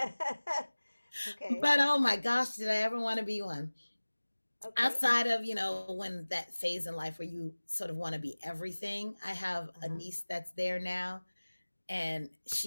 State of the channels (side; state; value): both; inverted; correlation -1.00